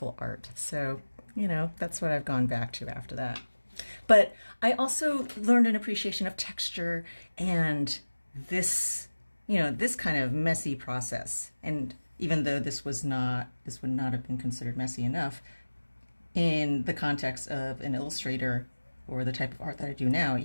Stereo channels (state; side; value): inverted; both; correlation -1.00